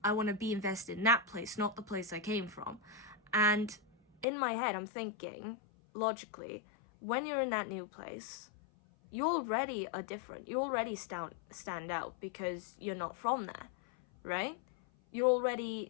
I want to be invested in that place, not the place I came from. And in my head, I'm thinking, logically, when you're in that new place, you already are different. You already stand out because you're not from there, right? You're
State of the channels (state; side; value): drops out; right; at 4.2 s